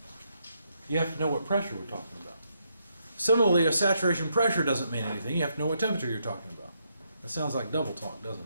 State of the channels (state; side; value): inverted; both; correlation -0.78